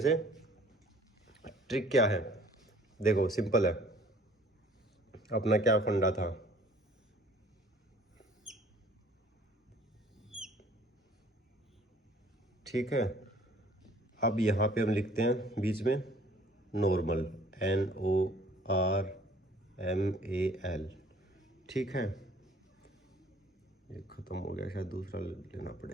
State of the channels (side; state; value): both; normal; correlation 0.55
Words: ट्रिक क्या है, देखो सिंपल है। अपना क्या फंडा था, ठीक है। अब यहाँ पे हम लिखते हैं बीच में नॉर्मल, NORMAL, ठीक है। ये ख़त्म हो गया, शायद दूसरा लेना